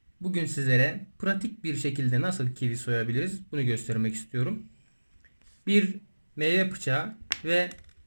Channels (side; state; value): both; inverted; correlation -1.00